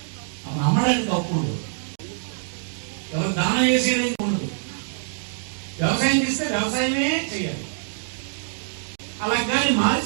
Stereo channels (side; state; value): left; silent; digital silence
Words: అమ్మడానికి అప్పుడు ఎవరు దానం చేసేది ఉండదు. వ్యవసాయం చేస్తే వ్యవసాయమే చేయాలి. అలా కానీ